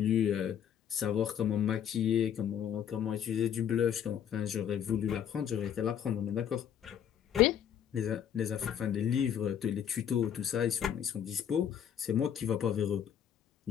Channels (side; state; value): right; quieter; 9.1 dB